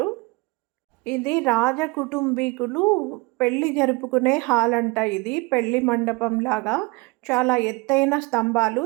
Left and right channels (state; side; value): quieter; left; 24.9 dB